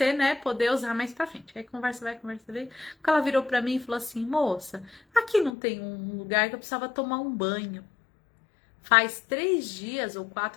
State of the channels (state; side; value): drops out; right; at 5.5 s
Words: né, poder usar mais pra frente. Aí conversa vai. Quando ela virou pra mim e falou assim, moça, aqui não tem um lugar que eu precisava tomar um banho. Faz 3 dias ou